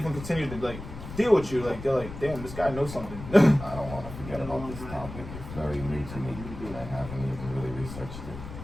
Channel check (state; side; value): noise; left; rumble, 11 dB below the sound